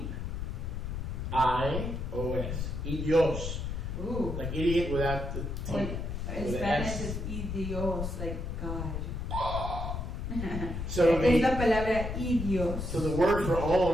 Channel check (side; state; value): left; noise; rumble, 4 dB below the sound